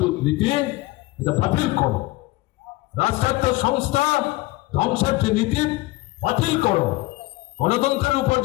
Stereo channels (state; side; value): quieter; right; 20.1 dB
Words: নীতি, এটা বাতিল করো। রাষ্ট্রায়ত্ত সংস্থা ধ্বংসের যে নীতি বাতিল করো। গণতন্ত্রের উপর